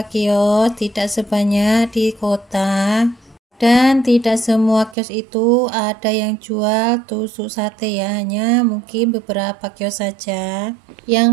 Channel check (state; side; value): drops out; left; at 5.0 s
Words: kios, tidak sebanyak di kota. Dan tidak semua kios itu ada yang jual tusuk sate ya, hanya mungkin beberapa kios saja. Yang